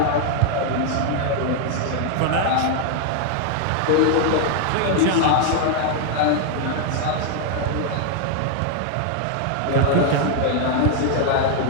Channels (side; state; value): both; different; correlation 0.00